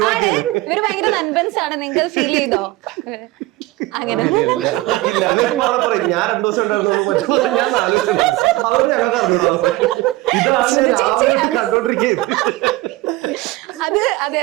ഇവര് ഭയങ്കര നൻപൻസ് ആണ്. നിങ്ങൾ ഫീൽ ചെയ്തോ അങ്ങനെ? ഞാൻ 2 ദിവസം ഉണ്ടായിരുന്നു. അത് അതെ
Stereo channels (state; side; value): quieter; left; 19.1 dB